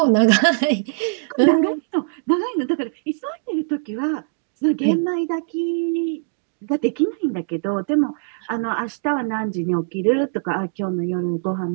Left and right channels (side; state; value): left; silent; digital silence